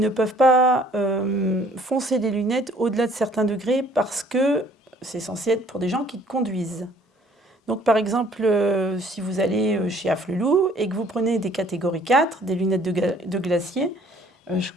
peuvent pas foncer les lunettes au-delà de certains degrés, parce que c'est censé être pour des gens qui conduisent. Donc, par exemple, si vous allez chez Afflelou et que vous prenez des catégories 4, des lunettes de glacier, je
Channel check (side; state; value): both; normal; correlation 0.58